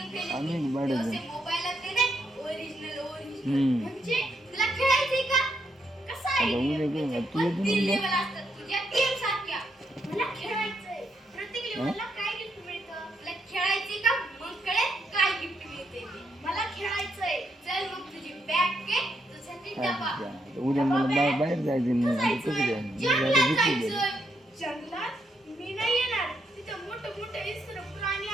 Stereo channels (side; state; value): both; normal; correlation 0.78